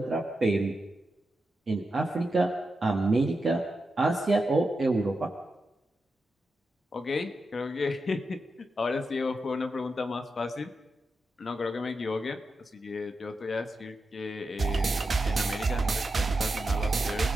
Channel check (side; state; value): both; normal; correlation 0.88